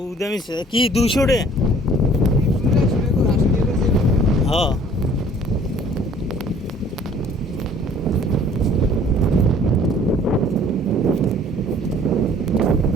কি 200 টাকা? হ্যাঁ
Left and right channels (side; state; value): both; normal; correlation 0.55